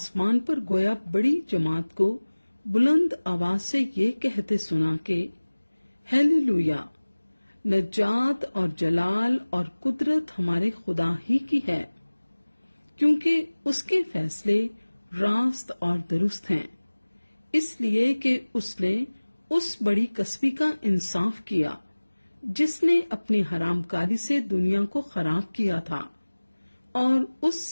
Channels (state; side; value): inverted; both; correlation -1.00